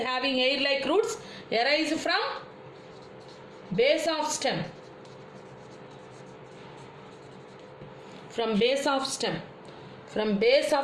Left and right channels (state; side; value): identical; both; correlation 1.00